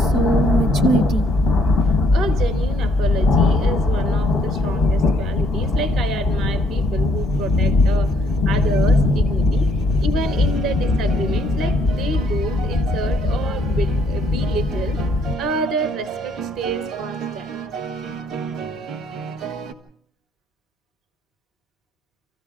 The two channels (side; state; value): both; normal; correlation 0.67